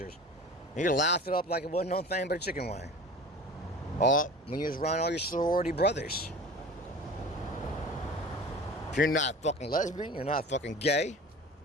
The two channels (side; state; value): both; normal; correlation 0.38